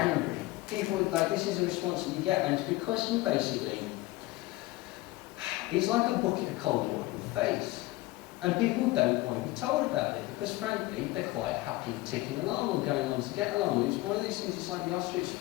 People, like, this is a response that you get, and it's because you basically, it's like a bucket of cold water in the face. And people don't want to be told about it because, frankly, they're quite happy ticking along or going on to get along. It's one of these things, it's like the ostrich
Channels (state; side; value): quieter; right; 19.4 dB